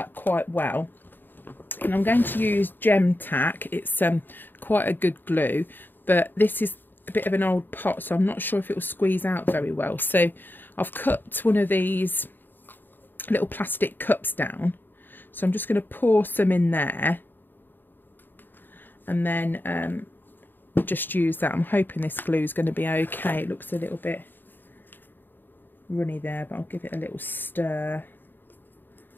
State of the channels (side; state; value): right; late; 0.093 ms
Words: quite well. And I'm going to use Gem Tack. It's quite a good glue, but this is a bit of an old pot, so I'm not sure if it will squeeze out very well. So I've cut one of these little plastic cups down, so I'm just going to pour some in there, and then just use that. I'm hoping this glue is going to be okay. It looks a little bit runny there, but I'll give it a little stir.